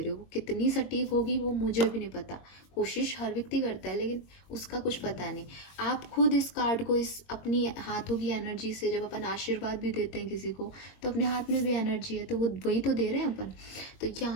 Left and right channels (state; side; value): late; right; 22 ms